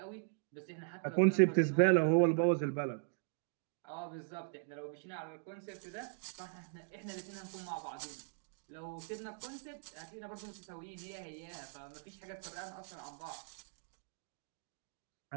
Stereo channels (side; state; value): left; silent; digital silence